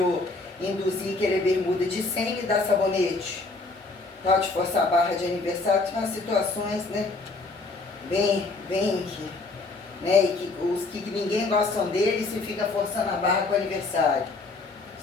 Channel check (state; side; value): quieter; right; 3.5 dB